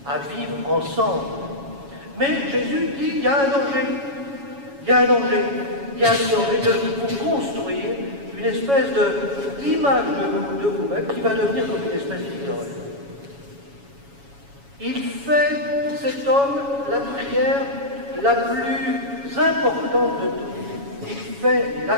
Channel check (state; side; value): late; left; 7.2 ms